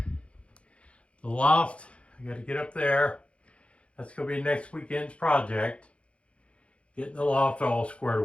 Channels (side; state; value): right; late; 0.061 ms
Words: The loft, I got to get up there. That's going to be next weekend's project. Getting the loft all squared